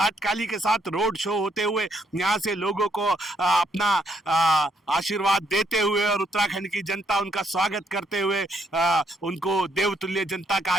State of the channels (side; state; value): both; normal; correlation 0.72